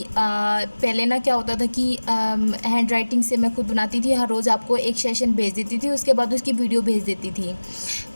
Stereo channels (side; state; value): both; inverted; correlation -1.00